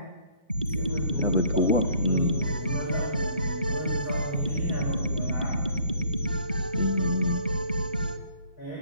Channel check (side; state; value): both; inverted; correlation -0.59